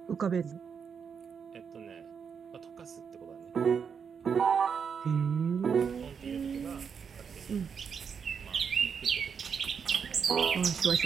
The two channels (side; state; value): left; quieter; 6.6 dB